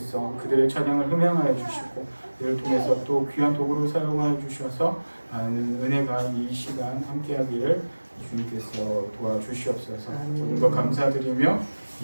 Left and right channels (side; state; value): both; inverted; correlation -1.00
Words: 그들의 찬양을 흠양하여 주시고 이를 통해서 또 귀한 도구로 사용하여 주셔서 많은 은혜가 이 시간 함께하기를 주님께서 도와주시옵소서. 모든 것 감사드리며